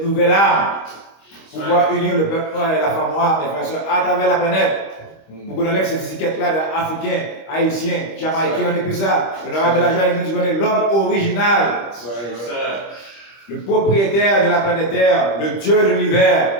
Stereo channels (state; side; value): late; right; 25 ms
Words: nouvelle arme pour pouvoir unir le peuple noir et la femme noire, mes frères, à travers la planète. Pour qu'on enlève cette étiquette-là d'Africains, Haïtiens, Jamaïcains, on n'est plus ça. L'honorable Elijah nous dit qu'on est l'homme original, le propriétaire de la planète Terre, le Dieu de